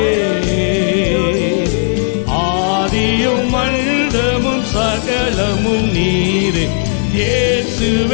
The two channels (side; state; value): right; silent; digital silence